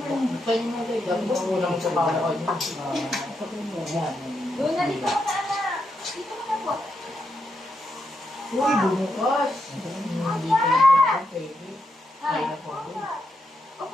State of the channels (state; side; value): normal; both; correlation 0.83